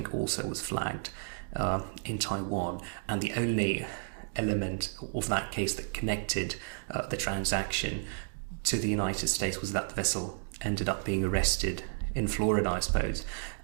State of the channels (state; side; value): silent; left; digital silence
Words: also was flagged in Taiwan. And the only element of that case that connected the transaction to the United States was that the vessel ended up being arrested in Florida, I suppose.